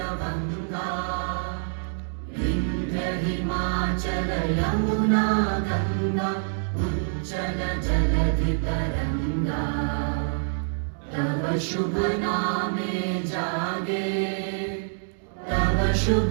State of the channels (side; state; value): left; silent; digital silence